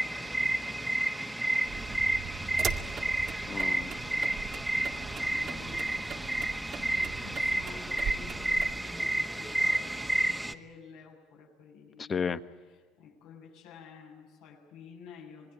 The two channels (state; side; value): normal; both; correlation 0.95